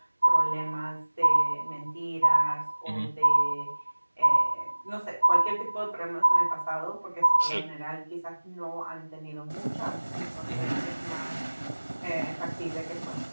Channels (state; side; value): inverted; both; correlation -1.00